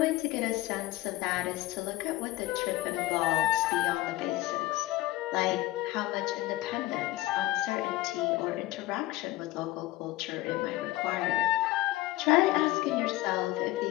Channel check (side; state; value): right; quieter; 17.3 dB